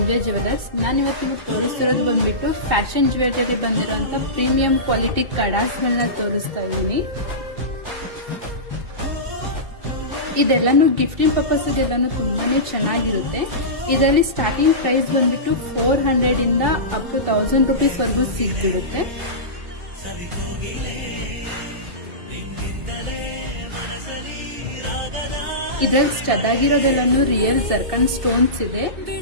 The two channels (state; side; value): late; left; 2.6 ms